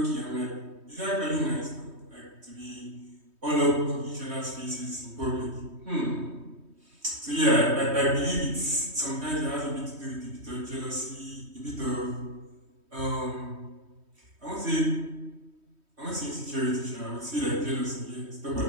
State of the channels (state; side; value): late; left; 3.2 ms